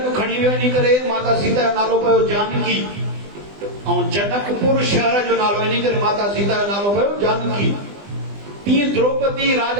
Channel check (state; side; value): late; left; 20 ms